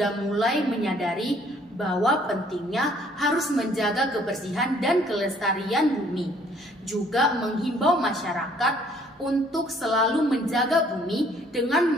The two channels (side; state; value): both; normal; correlation 0.61